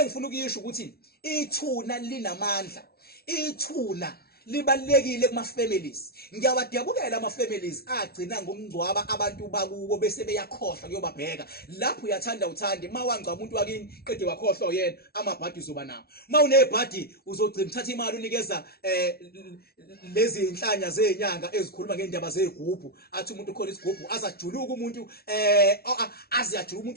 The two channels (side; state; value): right; late; 0.45 ms